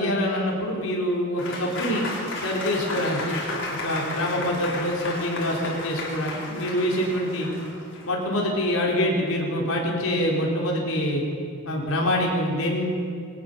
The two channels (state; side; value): normal; both; correlation 0.23